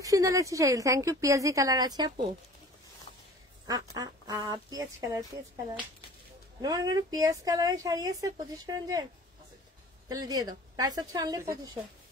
সুন্দর লাগছে শাড়ি। Thank you. পেঁয়াজি কালার আছে আপু, পেঁয়াজ কালার, পেঁয়াজ কালার, পেঁয়াজ কালারের শাড়ি আছে 2500 রেঞ্জের, তাহলে দিয়ে দাও। প্রাইস হচ্ছে অনলি 2500,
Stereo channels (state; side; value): normal; both; correlation 0.45